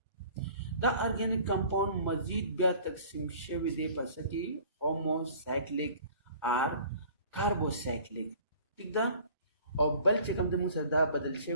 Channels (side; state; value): both; inverted; correlation -0.49